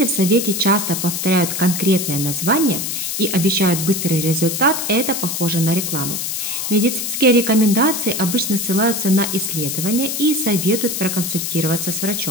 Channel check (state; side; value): noise; left; hiss, 3 dB below the sound